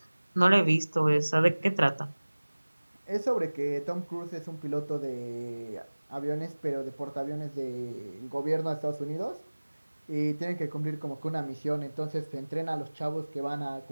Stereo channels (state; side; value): inverted; both; correlation -1.00